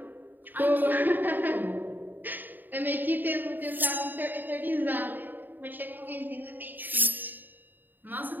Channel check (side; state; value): left; late; 0.090 ms